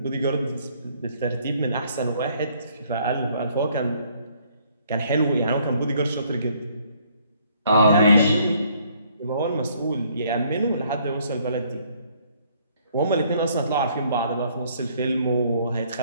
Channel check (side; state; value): both; inverted; correlation -0.64